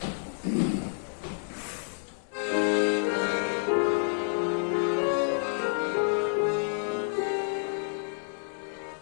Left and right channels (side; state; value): right; silent; 58 dB below the other